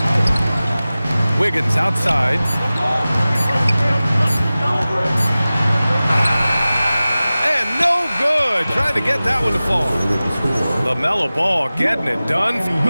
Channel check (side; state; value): both; inverted; correlation -0.97